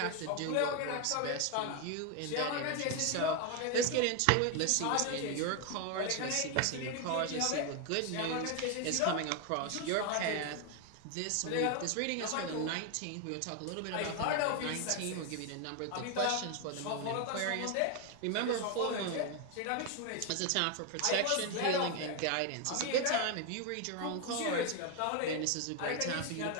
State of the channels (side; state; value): both; different; correlation 0.01